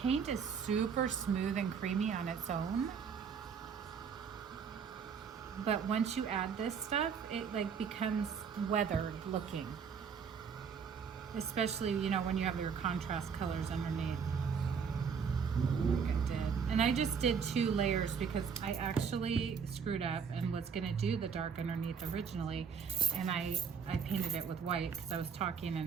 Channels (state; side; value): quieter; left; 6.5 dB